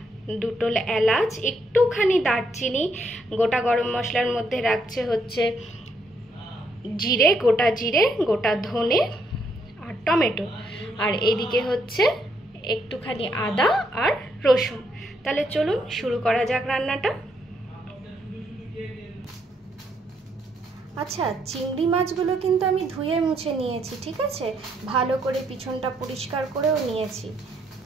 দুটো এলাচ, একটুখানি দারচিনি, গোটা গরম মশলার মধ্যে রাখছে হচ্ছে জিরে, গোটা জিরে, গোটা ধনে আর টমেটো, আর এইদিকে হচ্ছে একটুখানি আদা আর রসুন। তাহলে চলুন শুরু করা যাক রান্নাটা। আচ্ছা, চিংড়ি মাছগুলো কিন্তু আমি ধুয়ে মুছে নিয়েছি, ঠিক আছে? ভালো করে পিছনটা পরিষ্কার করেও নিয়েছি।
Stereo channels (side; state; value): both; normal; correlation 0.74